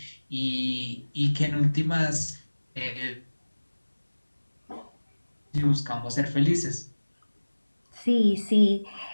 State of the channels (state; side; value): inverted; both; correlation -1.00